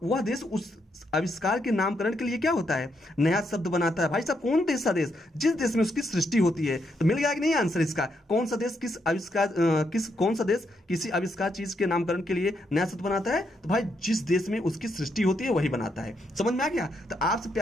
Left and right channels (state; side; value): normal; both; correlation 0.78